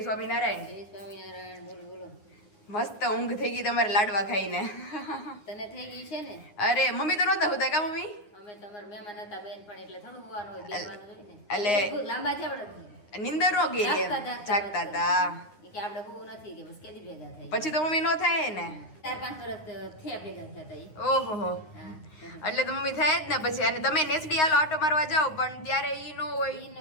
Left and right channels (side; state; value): right; late; 9.6 ms